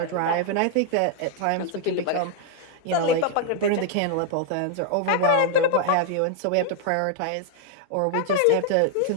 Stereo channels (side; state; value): both; different; correlation 0.00